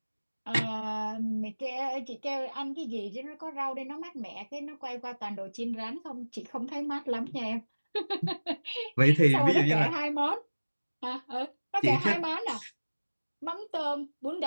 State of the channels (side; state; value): both; inverted; correlation -1.00